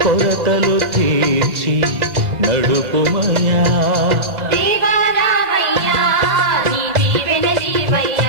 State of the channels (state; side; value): late; left; 2.0 ms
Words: కొరతలు తీర్చి నడుపుమయా దేవారావయ్యా నీ